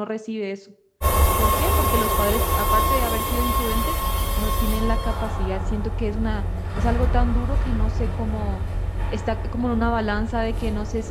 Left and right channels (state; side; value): identical; both; correlation 1.00